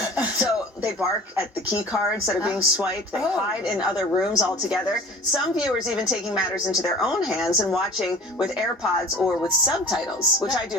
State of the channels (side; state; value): both; normal; correlation 0.42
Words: So they bark at the key cards that are being swiped. They hide in other rooms altogether. Some viewers even taking matters into their own hands and watching with AirPods or with subtitles, which I